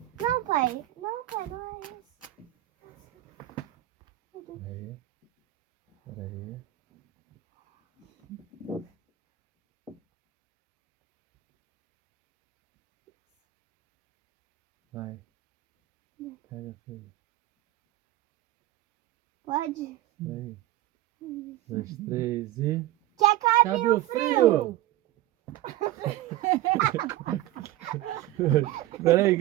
Não, pai. Não, pai, não é isso. Peraí. Vai. Pega, filho. Pode? Peraí. 1, 2, 3 e... Que acabe Cabe o o frio! frio! Peraí,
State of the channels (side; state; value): left; quieter; 15.0 dB